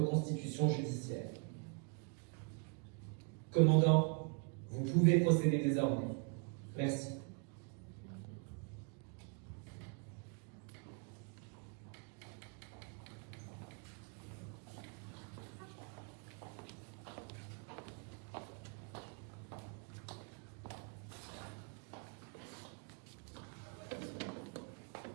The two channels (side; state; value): left; quieter; 37.3 dB